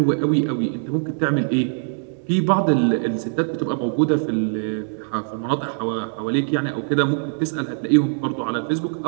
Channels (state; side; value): silent; left; 64 dB below the other